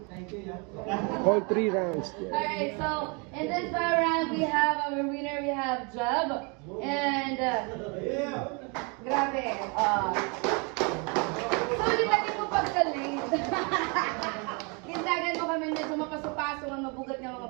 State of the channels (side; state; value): left; quieter; 32.8 dB